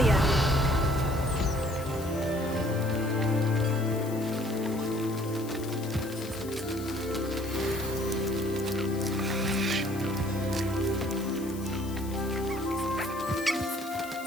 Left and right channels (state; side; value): noise; left; hiss, 16 dB below the sound